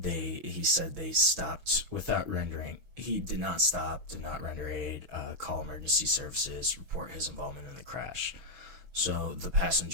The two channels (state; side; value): late; left; 6.1 ms